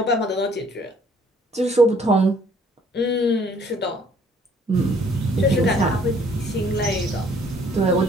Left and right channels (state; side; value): normal; both; correlation 0.60